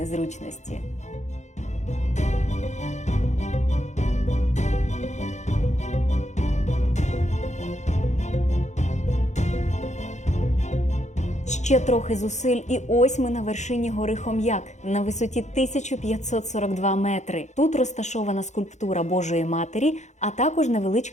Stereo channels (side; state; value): right; late; 0.34 ms